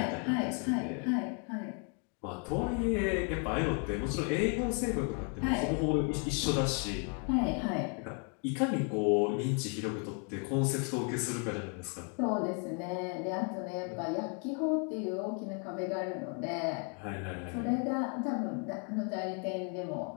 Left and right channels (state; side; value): quieter; right; 39.3 dB